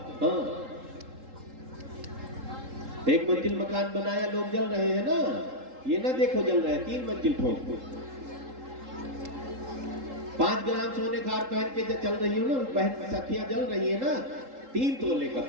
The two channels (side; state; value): left; late; 3.8 ms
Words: हाँ, एक मंजिल मकान बनाया, लोग जल रहे हैं ना, ये ना देखो जल रहे हैं, 3 मंजिल ठोक। 5 ग्राम सोने का हार पहन के चल रही हो ना, बहन सखियां जल रही है ना, 3 तोले का